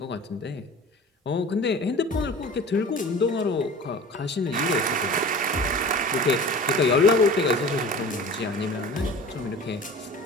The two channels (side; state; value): both; normal; correlation 0.39